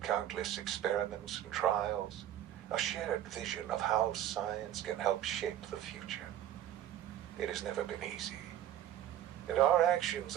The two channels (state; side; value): quieter; left; 11.6 dB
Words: countless experiments and trials, a shared vision of how science can help shape the future. It has never been easy, and our actions